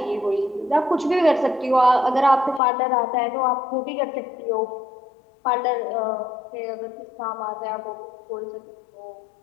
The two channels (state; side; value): drops out; right; at 2.6 s